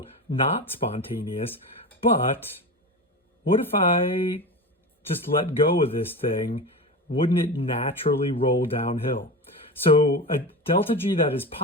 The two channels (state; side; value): normal; both; correlation 0.26